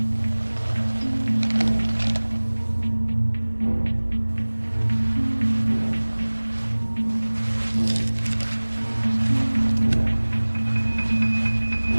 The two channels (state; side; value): inverted; both; correlation -1.00